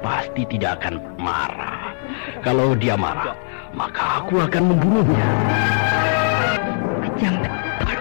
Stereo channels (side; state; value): right; silent; 66 dB below the other